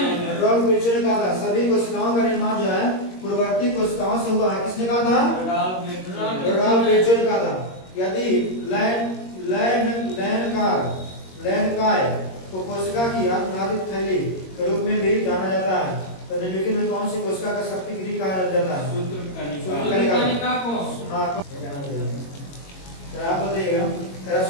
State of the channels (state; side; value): late; right; 22 ms